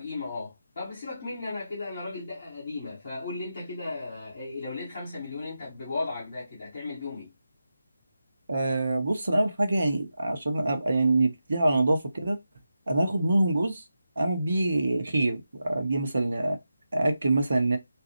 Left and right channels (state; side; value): inverted; both; correlation -0.89